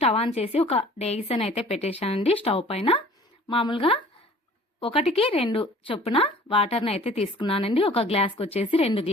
ఆన్ చేసి ఒక డేగిసన్ అయితే పెట్టేశానండి. స్టవ్ పైన మామూలుగా 1కి 2 చొప్పున వాటర్ని అయితే తీసుకున్నానండి. ఒక గ్లాస్కి వచ్చేసి 2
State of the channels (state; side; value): normal; both; correlation 0.49